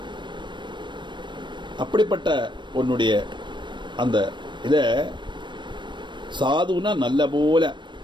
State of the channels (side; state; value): left; late; 0.22 ms